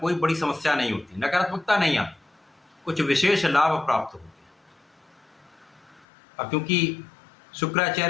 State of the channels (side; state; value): right; drops out; at 6.1 s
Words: बड़ी समस्या नहीं होती, नकारात्मकता नहीं आती, कुछ विशेष लाभ प्राप्त होते हैं। अब क्योंकि